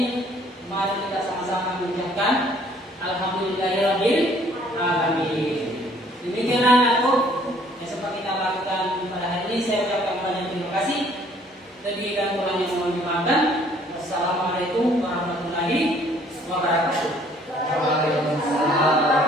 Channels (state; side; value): normal; both; correlation 0.60